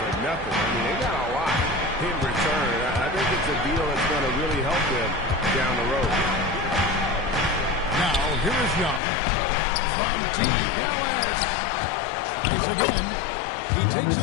nothing. I mean, they got a lot in return. I think it's a deal that's going to really help them down the road. Now, here is Young from Team Dallas. Tries again. He takes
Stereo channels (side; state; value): right; drops out; at 9.0 s